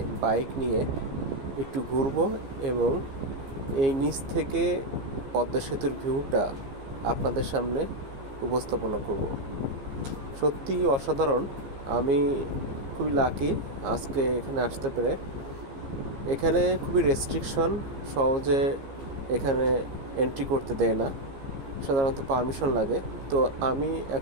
বাইক নিয়ে একটু ঘুরবো এবং এই নিচ থেকে পদ্মা সেতুর ভিউটা আপনাদের সামনে উপস্থাপনা করব। সত্যি অসাধারণ। আমি খুবই লাকি আজকে এখানে আসতে পেরে। এখানে খুবই রেস্ট্রিকশন, সহজে এখানে এন্ট্রি করতে দেয় না, সাধারণত পারমিশন লাগে। তো আমি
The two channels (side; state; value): left; late; 15 ms